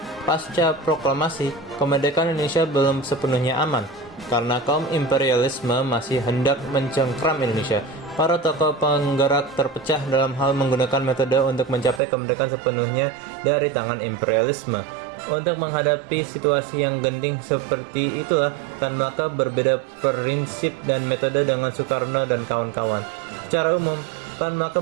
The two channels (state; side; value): drops out; left; at 12.0 s